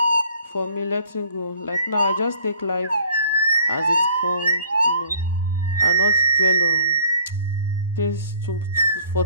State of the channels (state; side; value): inverted; both; correlation -0.55